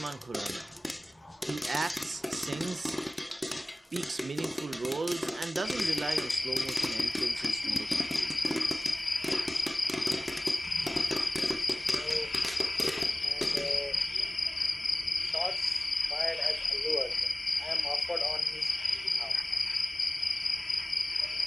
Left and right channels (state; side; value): normal; both; correlation 0.97